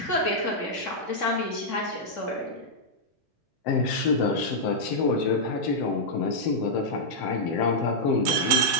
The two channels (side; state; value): both; normal; correlation -0.07